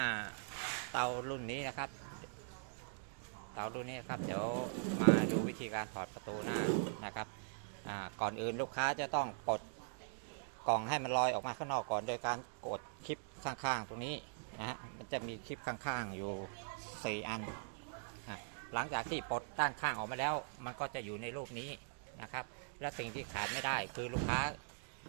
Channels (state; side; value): silent; left; digital silence